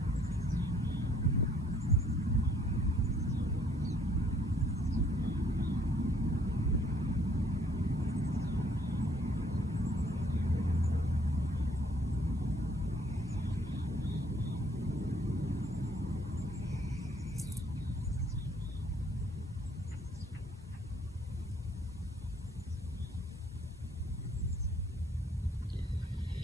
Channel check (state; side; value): normal; both; correlation 0.63